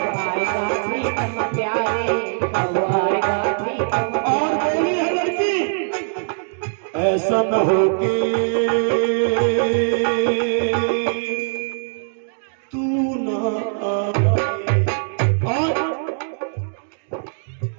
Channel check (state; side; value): silent; left; digital silence